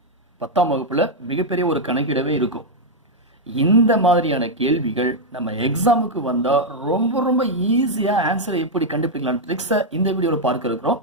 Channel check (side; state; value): both; normal; correlation -0.01